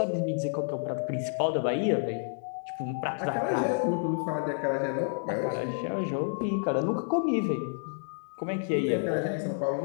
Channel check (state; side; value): silent; right; digital silence